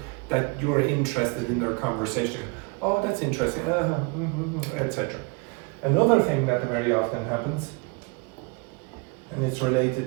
that you're interested in their conversation. Oh, that's interesting, etc. Another thing that very often happens, and it's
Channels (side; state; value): left; quieter; 31.7 dB